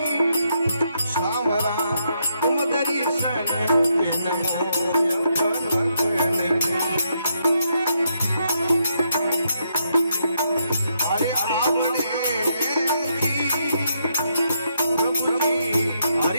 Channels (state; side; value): inverted; both; correlation -0.78